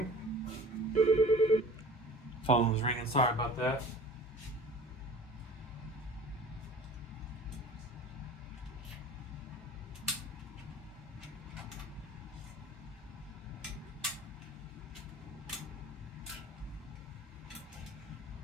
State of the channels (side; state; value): both; normal; correlation 0.42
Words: Phone was ringing. Sorry about that.